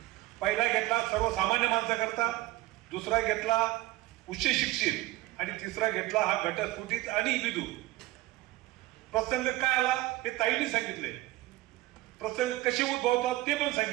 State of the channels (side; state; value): left; quieter; 18.1 dB